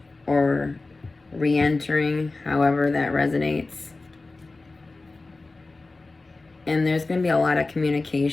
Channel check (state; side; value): quieter; right; 3.4 dB